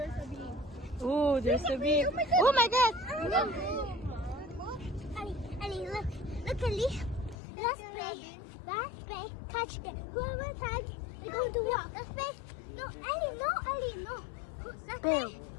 a bee. Oh, there's a bee. Oh my God. Ellie, look, Ellie. Let's play catch game. Whoever tag, we're going to walk. Let's play. No, Ellie, no. Let's Go. play.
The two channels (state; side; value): drops out; right; at 7.4 s